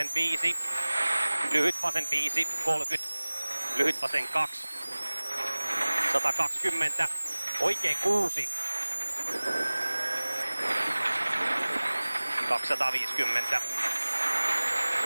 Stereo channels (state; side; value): inverted; both; correlation -1.00